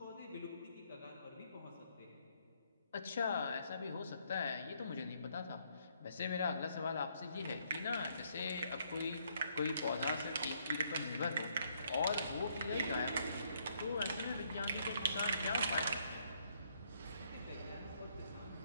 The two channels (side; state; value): both; inverted; correlation -0.70